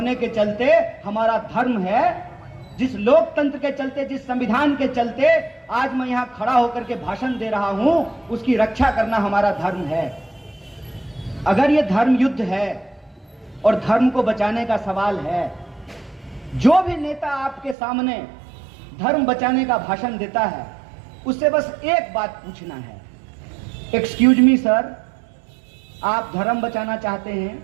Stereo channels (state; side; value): drops out; left; at 17.8 s